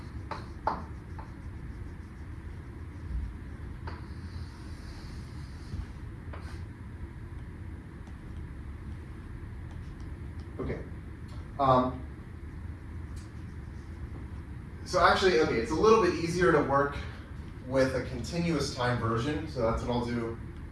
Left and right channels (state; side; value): identical; both; correlation 1.00